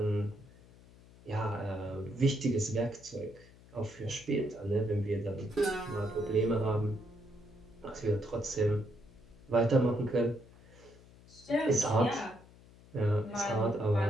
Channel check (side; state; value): left; noise; hum, 23 dB below the sound